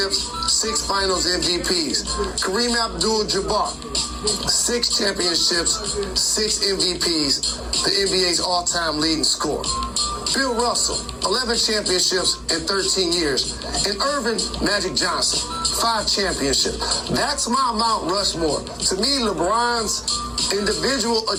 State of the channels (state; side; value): identical; both; correlation 1.00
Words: 6 finals MVPs. Kareem Abdul-Jabbar, 6 championships, 6 MVPs, the NBA's all-time leading scorer. Bill Russell, 11 championships in 13 years. And Irvin Magic Johnson, 5 championships. That's my Mount Rushmore. To me, LeBron's individual